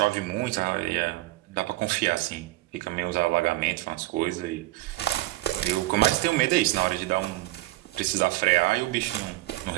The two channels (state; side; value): quieter; left; 18.2 dB